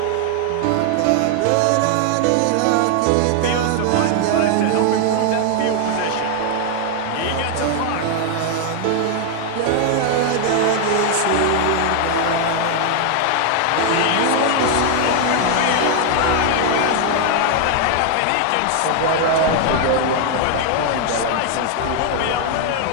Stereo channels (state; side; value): different; both; correlation 0.00